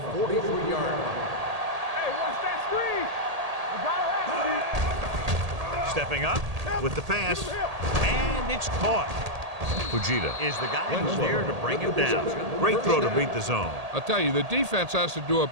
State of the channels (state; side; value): late; left; 1.8 ms